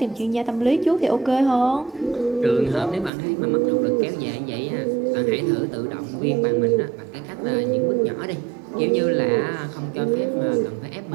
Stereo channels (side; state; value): left; drops out; at 3.1 s